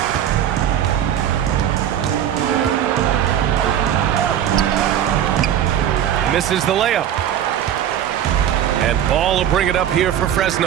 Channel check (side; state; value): left; quieter; 10.3 dB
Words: Misses the layup. And Ball will bring it up here for